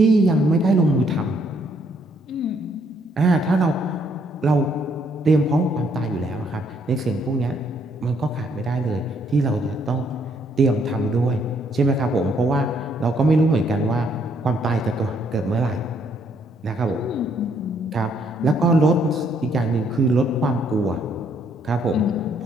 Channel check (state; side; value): normal; both; correlation 0.69